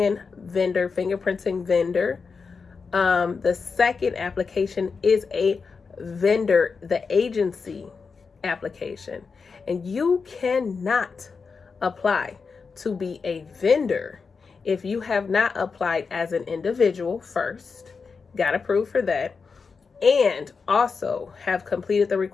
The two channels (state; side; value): quieter; right; 5.1 dB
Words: vendor, fingerprinting vendor. The second application is a vendor, the agency application. And you cannot apply to be a vendor if you have not applied as an individual first. Got approved for that. And also have completed the